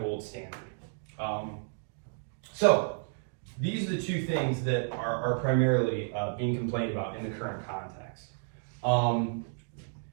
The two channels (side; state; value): left; silent; digital silence